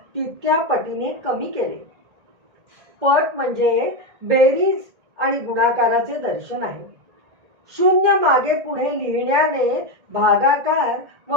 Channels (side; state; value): left; late; 1.9 ms